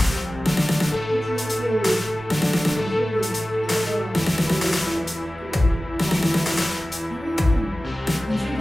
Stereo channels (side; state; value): both; normal; correlation 0.96